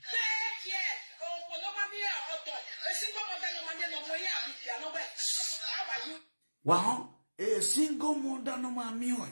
Wow, a single mother no mammy,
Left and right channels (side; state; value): both; inverted; correlation -1.00